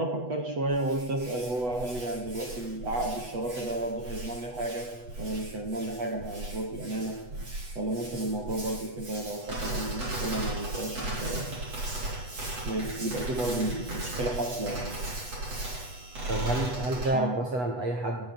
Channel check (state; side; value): late; left; 8.1 ms